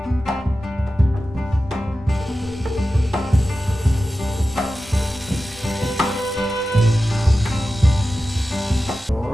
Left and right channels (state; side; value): normal; both; correlation 0.93